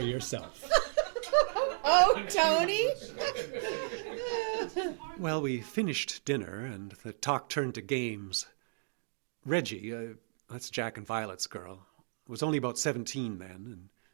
yourself. Oh, Tony! Well, we finished dinner, and the talk turned to games. Reggie, that's Jack and Violet's girl, was only about 17 then, and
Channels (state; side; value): silent; left; digital silence